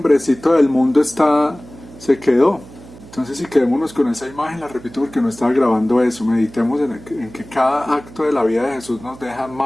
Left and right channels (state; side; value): noise; right; hum, 19 dB below the sound